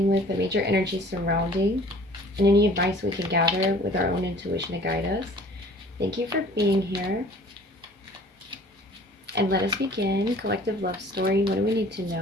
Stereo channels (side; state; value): both; normal; correlation 0.50